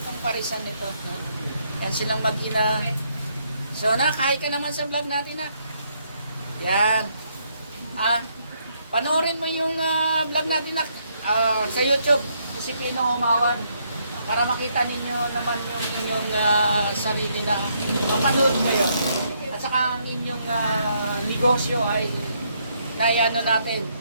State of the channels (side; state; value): both; inverted; correlation -0.73